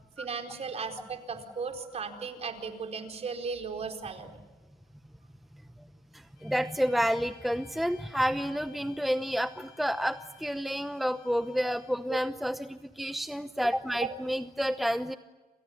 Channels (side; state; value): both; normal; correlation 0.90